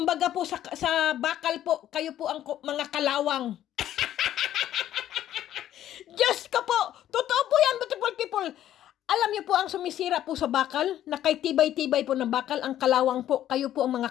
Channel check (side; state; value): right; quieter; 12.0 dB